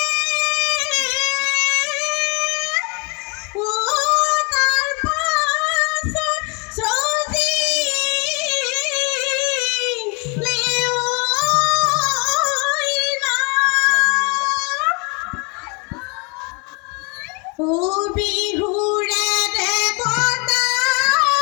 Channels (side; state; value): right; quieter; 32.1 dB